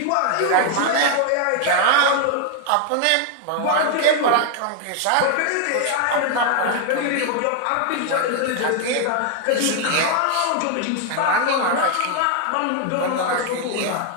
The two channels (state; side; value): different; both; correlation 0.00